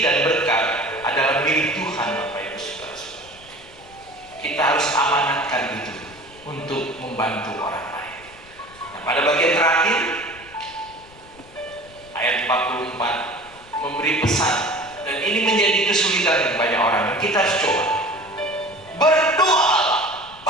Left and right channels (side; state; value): left; noise; rumble, 24 dB below the sound